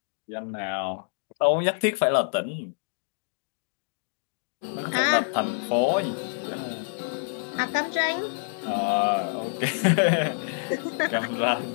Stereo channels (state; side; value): silent; right; digital silence